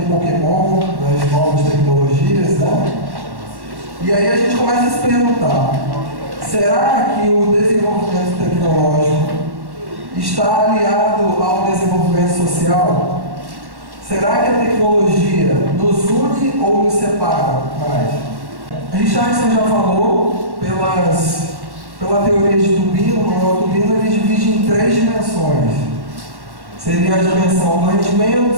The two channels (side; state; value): left; late; 1.1 ms